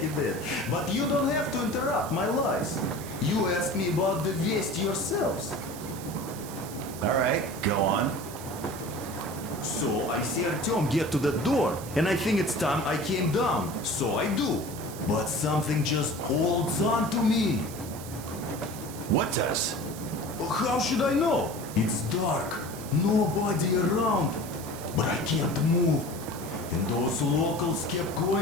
he did. But you don't have to interrupt my lies. You asked me about the Vest yourselves. Alright, go on. So I see Artyom get to the door, and I think it's time I came down. So I do. But something just holds on to me. What does? How should I know? It's dark, nobody around. But I can't move. And those locals kept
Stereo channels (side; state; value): right; noise; hiss, 14 dB below the sound